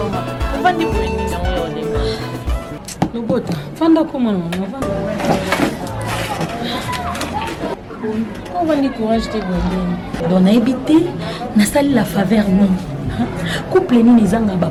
On va dire pour une mission. No bota, fanda como não, on va ni courage de bonheur. Donc na habité, na salle la faveur non. Couple ni nizanga ba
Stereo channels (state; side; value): identical; both; correlation 1.00